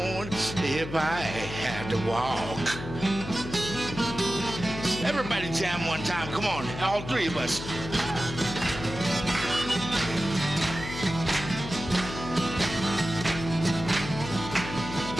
if I had to walk. Everybody jam one time. Come on, all three of us.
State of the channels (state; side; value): noise; left; hum, 9 dB below the sound